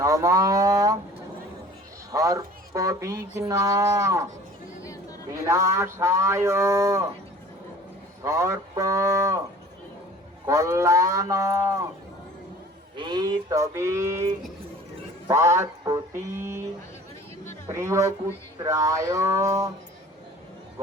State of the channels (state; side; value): normal; both; correlation 0.47